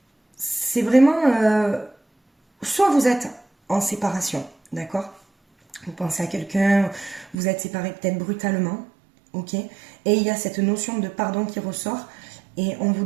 c'est vraiment... soit vous êtes en séparation, d'accord? Vous pensez à quelqu'un, vous êtes séparés peut-être brutalement, ok? Et il y a cette notion de pardon qui ressort. Et on vous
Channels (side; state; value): left; drops out; at 7.4 s